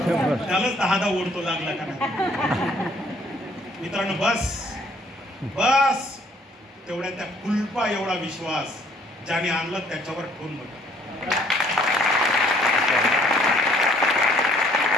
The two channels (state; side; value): normal; both; correlation 0.62